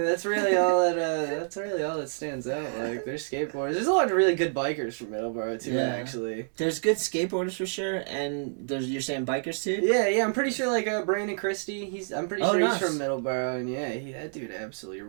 that's really all that stands out. Like, there's skateboarders. There's a lot of really good bikers from Middleborough too, actually. There's good skateboarders for sure, and you're saying bikers too? Yeah, I'm pretty sure, like, Brandon Christie, I'm pretty sure nice. he's from Middleborough, and yeah, that dude absolutely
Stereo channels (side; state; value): left; silent; digital silence